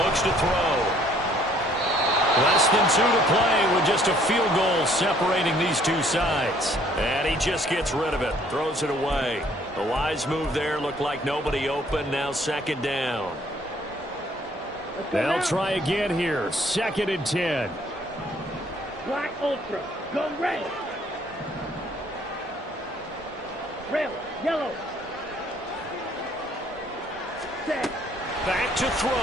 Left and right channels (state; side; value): normal; both; correlation 0.61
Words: looks to throw. Less than 2 to play with just a field goal separating these two sides. And he just gets rid of it, throws it away. A wise move there, looked like nobody open, now second down. They'll try again here, 2nd and 10. Black Ultra. Go red. Red. Yellow. Set. Back to throw.